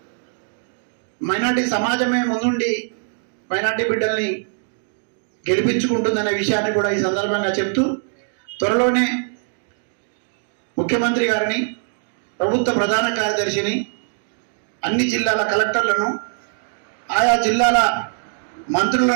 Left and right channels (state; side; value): silent; left; digital silence